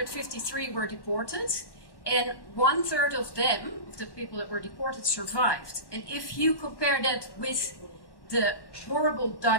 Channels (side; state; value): right; late; 1.1 ms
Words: were deported, and 1/3 of them, of the people that were deported, survived. And if you compare that with the horrible